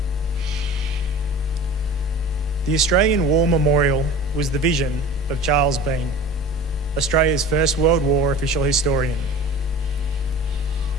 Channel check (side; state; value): left; noise; rumble, 20 dB below the sound